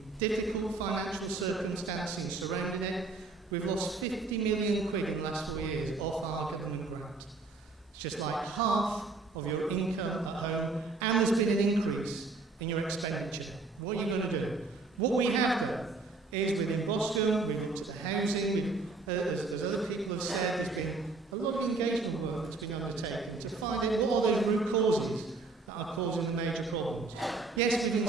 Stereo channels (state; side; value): quieter; left; 3.8 dB